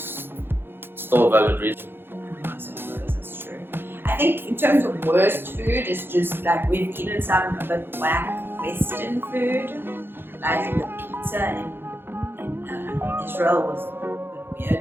Still a valid reason. That's true. I think in terms of worst food, it's just like we've eaten some a bit whack Western food. Like the pizza in Israel was a bit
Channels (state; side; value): late; left; 0.10 ms